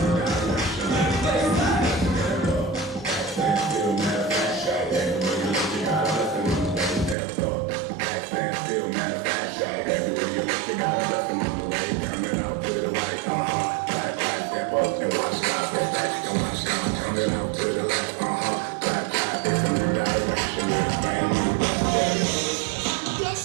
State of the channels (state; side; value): drops out; left; at 7.2 s